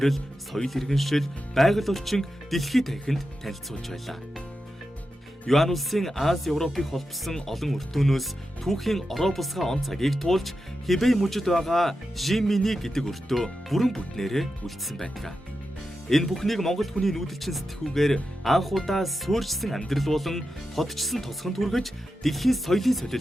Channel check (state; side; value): normal; both; correlation 0.90